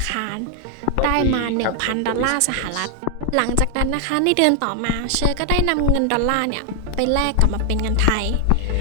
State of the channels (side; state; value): both; different; correlation 0.00